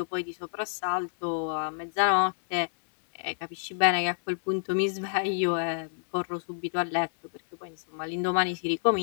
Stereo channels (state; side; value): silent; right; digital silence